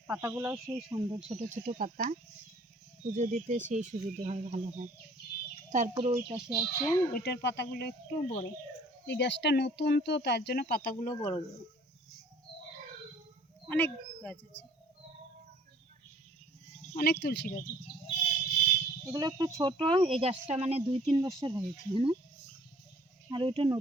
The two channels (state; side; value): normal; both; correlation 0.55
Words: পাতাগুলোও সেই সুন্দর, ছোট ছোট পাতা, পুজো দিতে সেই সুবিধে হয়, ভালো হয়। তারপরে ওই পাশে আছে, ওইটার পাতাগুলো একটু বড়। এই গাছটা নতুন তো, তার জন্য পাতাগুলো বড় বড়। অনেক গাছ আছে, অনেক তুলসী গাছ আছে। এগুলো একটু ছোট, এই গাছটা মানে 2-3 বছর হয়েছে, হ্যাঁ, আর ওইটা